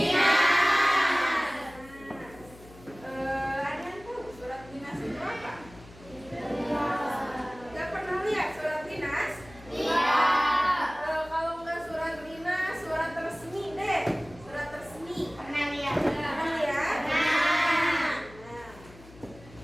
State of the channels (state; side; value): noise; left; hum, 21 dB below the sound